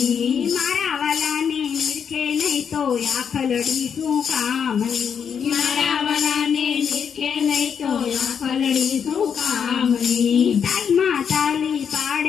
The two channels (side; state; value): right; quieter; 7.3 dB